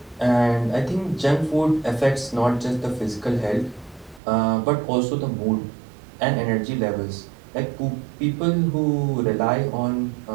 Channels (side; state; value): left; drops out; at 4.2 s